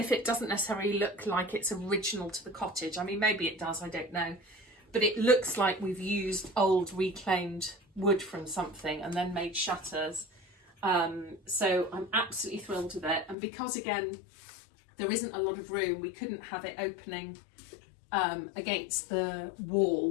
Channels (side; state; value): right; drops out; at 13.4 s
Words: it doesn't necessarily look like it's original to the cottage, I mean, maybe it does, I don't know, but it looks like we've used old reclaimed wood from something and then made shutters. So I'm absolutely thrilled with it. And because again, there isn't a lot of room, we couldn't have it opening against the